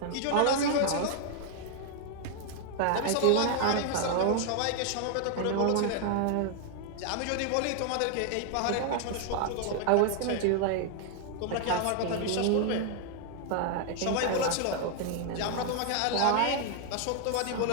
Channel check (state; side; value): different; both; correlation 0.00